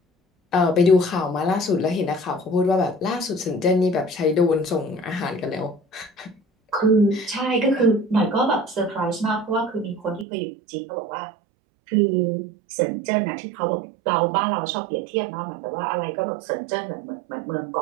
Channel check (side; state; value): left; drops out; at 10.2 s